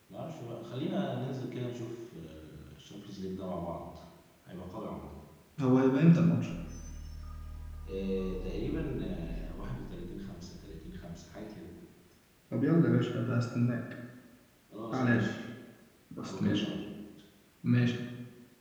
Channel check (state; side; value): identical; both; correlation 1.00